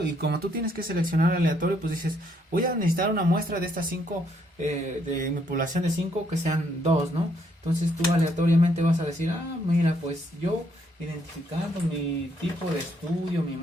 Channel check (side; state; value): both; normal; correlation 0.71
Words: Y como tú tienes que seleccionar aleatorio, pues dices, voy a necesitar una muestra de estas 5, de mi población de 5, que sean 2, ¿no? Entonces tú aleatoriamente vas a decir, mira, pues yo identificando mi tipo de estudio, mi